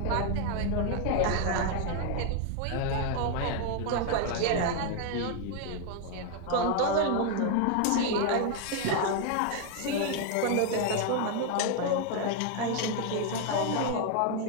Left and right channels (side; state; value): both; different; correlation 0.01